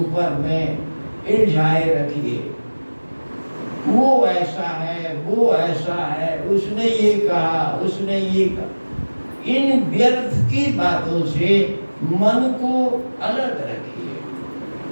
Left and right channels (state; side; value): inverted; both; correlation -1.00